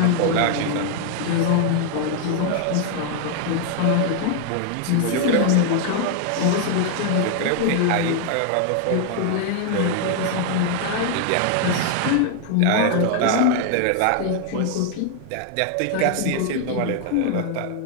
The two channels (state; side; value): different; both; correlation 0.00